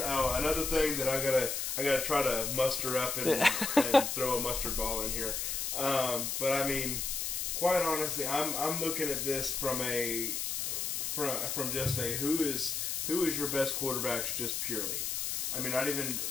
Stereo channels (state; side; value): noise; left; hiss, 1 dB below the sound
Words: Another thing that I gotta try to muster up and throw a mustard ball in here. But quite honestly, I'm looking at this from just a who is your best quarterbacks just purely. Not